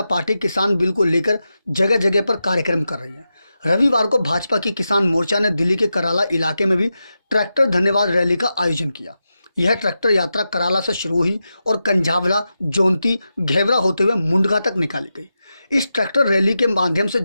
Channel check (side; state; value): both; inverted; correlation -0.90